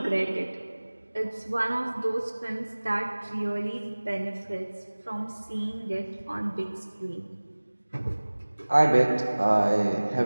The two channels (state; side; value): inverted; both; correlation -1.00